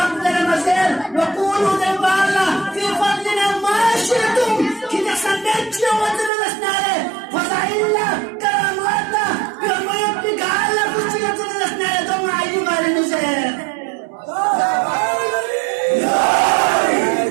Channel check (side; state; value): left; drops out; at 6.3 s